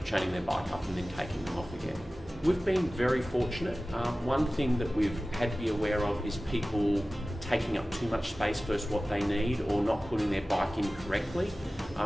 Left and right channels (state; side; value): normal; both; correlation 0.96